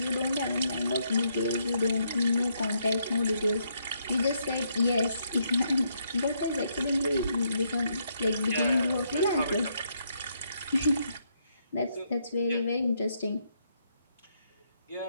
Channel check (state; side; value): inverted; both; correlation -0.75